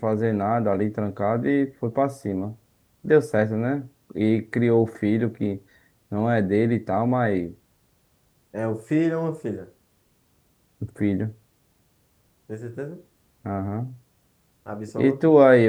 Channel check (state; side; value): identical; both; correlation 1.00